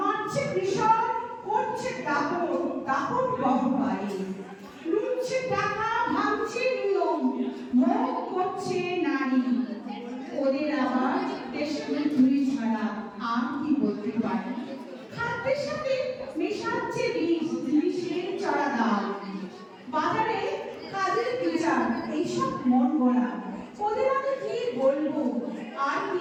কৃষক, করছে দাপট গহ্বরে, লুটছে টাকা, ভাঙছে নিয়ম, ভোগ করছে নারী। ওদের আবার দেশের ধুলি ছাড়া আর কি বলতে পারে? খাদ্যের সাথে মেশাচ্ছে বিষ, জিনিসের চড়া দাম, বাজারে কাজের বিচার, এইসব মন গড়া। ওদের আমি কি বলবো? আর কি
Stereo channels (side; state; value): both; identical; correlation 1.00